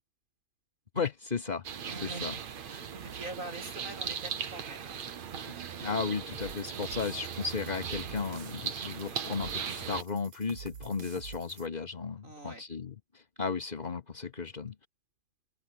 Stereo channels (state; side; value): late; left; 2.5 ms